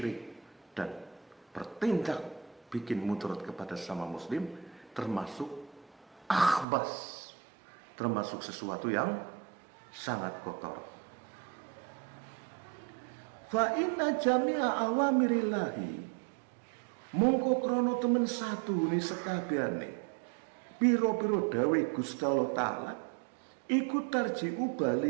dan bertindak bikin mudarat kepada sama muslim, termasuk akhbas, termasuk sesuatu yang sangat kotor. Fa inna jami'a awamirillahi, mongko krono temen satu ni sekabehane piro-piro dawe Gusti Allah Ta'ala iku tarji'u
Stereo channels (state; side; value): drops out; left; at 6.7 s